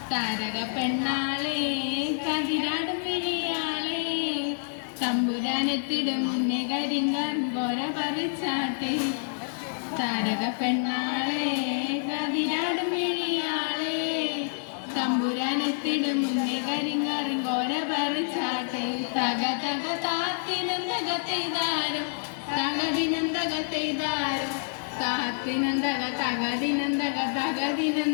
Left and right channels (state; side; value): silent; right; digital silence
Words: താരക പെണ്ണാളെ കതിരാടും വിഴിയാളെ തമ്പുരാനെത്തിടും മുന്നേ കരിങ്ങാൻ പോര പറിച്ചാട്ടെ താരക പെണ്ണാളെ കതിരാടും വിഴിയാളെ തമ്പുരാനെത്തിടും മുന്നേ കരിങ്ങാറും കോര പറിച്ചാട്ടെ തക തക താത്തിനന്തക തെയ്താരോ തകതിനന്തക തെയ്താരോ താത്തിനന്തക തകതിനന്തക